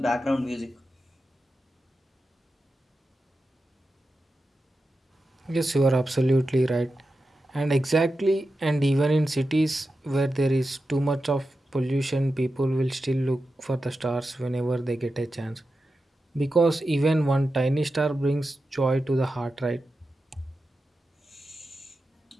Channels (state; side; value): normal; both; correlation 0.91